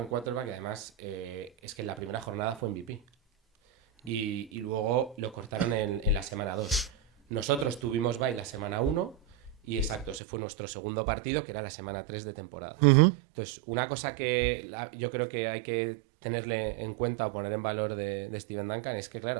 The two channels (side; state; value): left; drops out; at 10.2 s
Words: quarterback y además es que en la primera jornada fue MVP. Y luego lo cortaron en la semana 2. Nosotros tuvimos bye la semana 1 y exacto, ese fue nuestro segundo partido, que era la semana 3 de temporada. Entonces, una cosa que yo creo que hay que tenerle en cuenta o poner en valor de Steven Duncan es que,